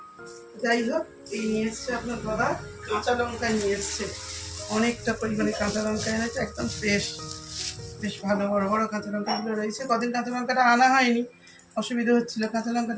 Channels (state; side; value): identical; both; correlation 1.00